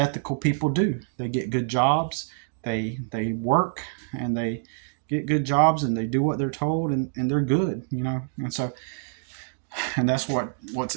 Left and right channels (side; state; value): left; silent; digital silence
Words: people do. They get good jobs, they work, and they get good jobs, and they do what they're told, and they're good, And so and that's what's